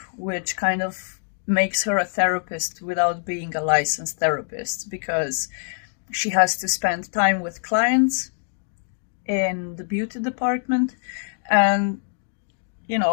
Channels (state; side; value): silent; right; digital silence